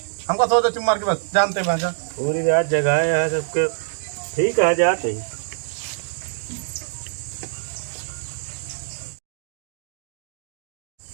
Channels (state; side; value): silent; left; digital silence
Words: हमको सो दे चुम मार के बस जानते हैं भाषा पूरी रात जगह है सबके ठीक है जाते ही।